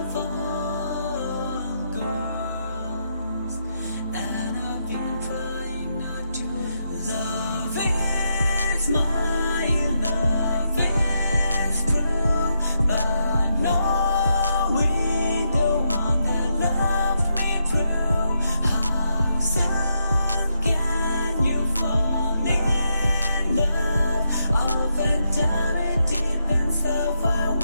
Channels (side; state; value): both; inverted; correlation -0.81